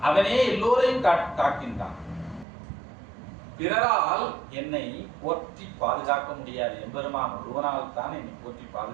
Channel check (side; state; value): left; drops out; at 2.5 s